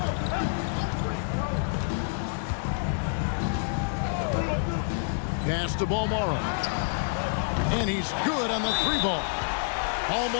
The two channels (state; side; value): silent; right; digital silence